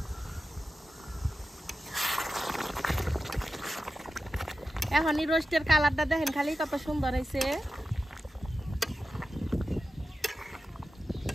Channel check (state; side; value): normal; both; correlation 0.92